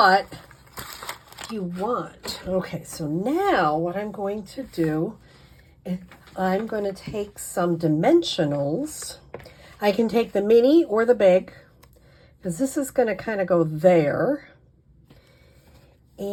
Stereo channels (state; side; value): identical; both; correlation 1.00